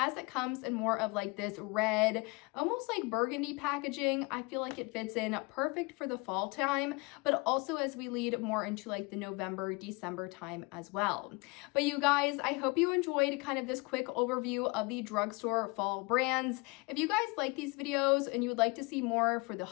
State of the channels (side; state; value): right; quieter; 27.4 dB